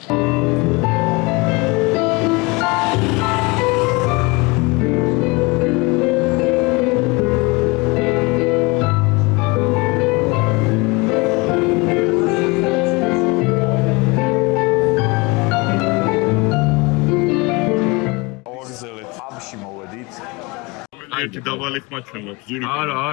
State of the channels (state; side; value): quieter; right; 26.2 dB